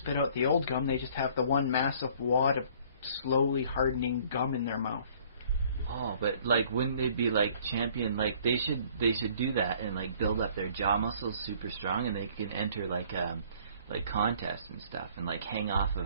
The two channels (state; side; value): inverted; both; correlation -0.56